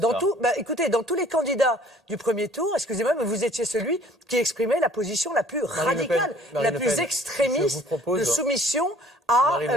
Ça. écoutez, dans tous les candidats du premier tour, excusez-moi, mais vous étiez celui qui exprimait la position la plus Marine Le Pen, radicale, Marine la Le plus Pen, je extrémiste vous propose- de soumission à Marine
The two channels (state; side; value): normal; both; correlation 0.55